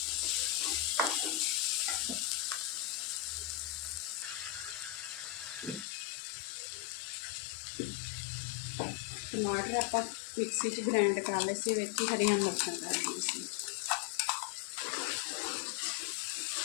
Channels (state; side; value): drops out; right; at 5.9 s